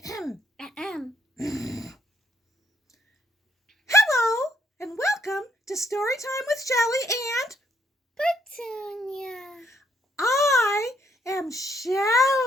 Hello, and welcome to Story Time with Shelley and Petunia. I am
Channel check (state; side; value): normal; both; correlation 0.71